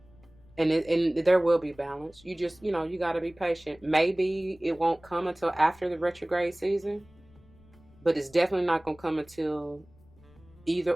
And there will be balance. You just, you got to be patient. Maybe it won't come until after the retrograde season, but it's definitely not going to come until either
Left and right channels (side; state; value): left; noise; rumble, 27 dB below the sound